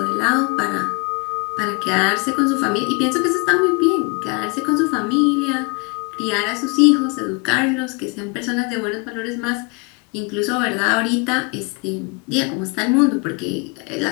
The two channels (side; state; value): right; quieter; 31.1 dB